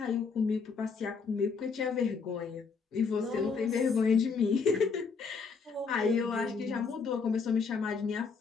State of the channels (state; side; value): quieter; right; 5.2 dB